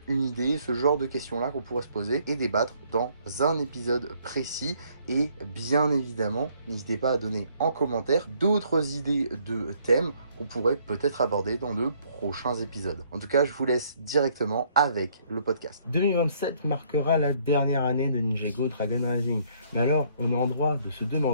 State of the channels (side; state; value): both; inverted; correlation -0.65